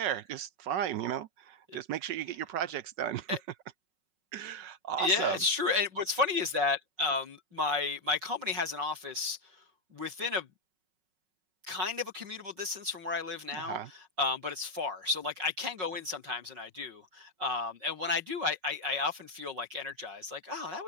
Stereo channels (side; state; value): left; late; 5.4 ms